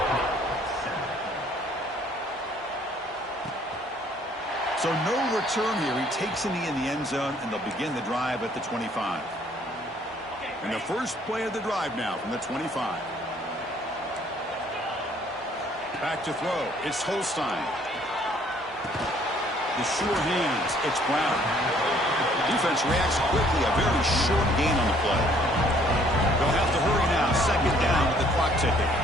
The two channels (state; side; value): normal; both; correlation 0.61